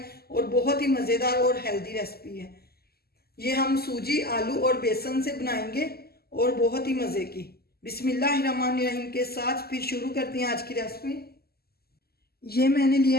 और बहुत ही मज़ेदार और हेल्दी रेसिपी है। ये हम सूजी, आलू और बेसन से बनाएंगे और बहुत ही मज़े की। बिस्मिल्लाहिर्रहमानिर्रहीम के साथ फिर शुरू करते हैं आज की रेसिपी। ये मैंने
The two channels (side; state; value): right; late; 0.46 ms